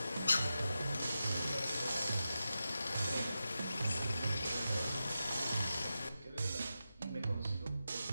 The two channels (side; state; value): both; inverted; correlation -0.91